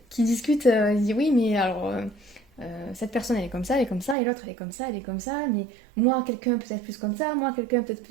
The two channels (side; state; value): left; drops out; at 4.2 s